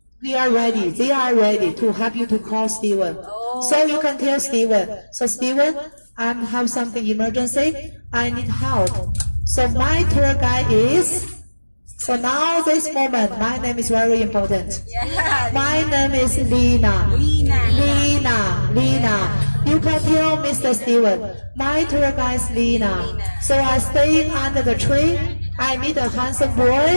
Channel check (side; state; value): both; inverted; correlation -1.00